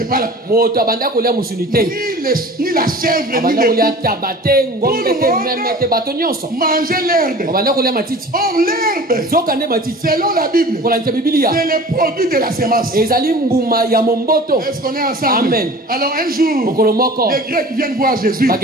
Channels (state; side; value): normal; both; correlation 0.41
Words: pas ni la chèvre ni le veau. Tout le monde mangeait l'herbe. Or l'herbe, selon la Bible, c'est le produit de la semence. Est-ce qu'on est ensemble? Amen. Alors un jour, les Grecs viennent voir Jésus